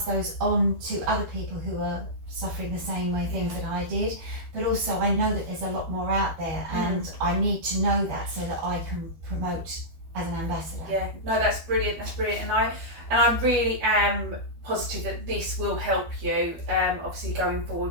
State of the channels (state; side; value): late; left; 12 ms